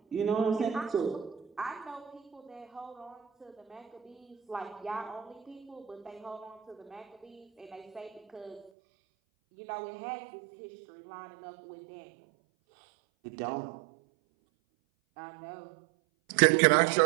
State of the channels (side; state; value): left; drops out; at 8.7 s